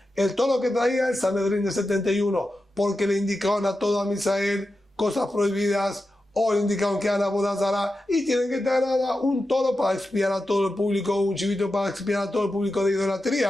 el toro que traía el Sanedrín de 71, porque le indicaban a todo a Misael cosas prohibidas, o le indicaron que eran abodazara y tienen que traer un toro para expiar a todo el público, un chivito para expiar a todo el público de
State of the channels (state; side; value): normal; both; correlation 0.91